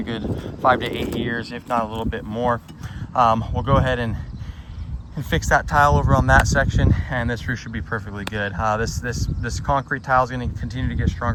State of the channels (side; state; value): both; identical; correlation 1.00